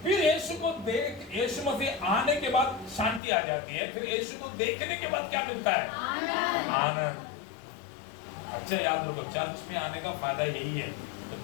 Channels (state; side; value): drops out; right; at 3.2 s